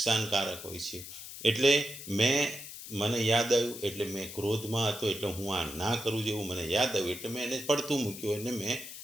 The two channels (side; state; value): left; noise; hiss, 11 dB below the sound